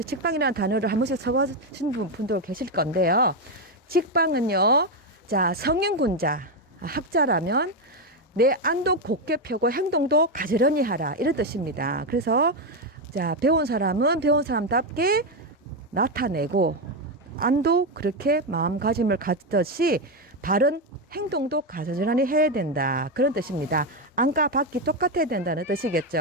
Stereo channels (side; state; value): both; normal; correlation 0.07